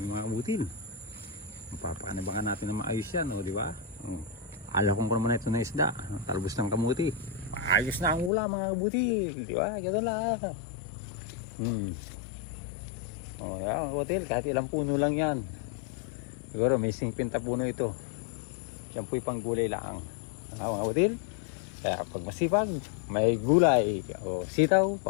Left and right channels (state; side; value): drops out; right; at 8.3 s